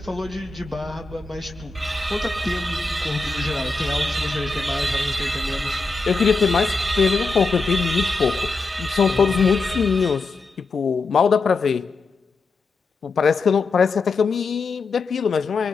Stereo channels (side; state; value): right; quieter; 3.8 dB